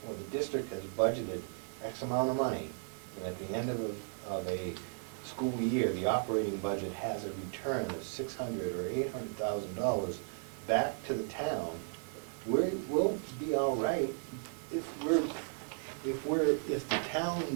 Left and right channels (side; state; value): left; silent; 54 dB below the other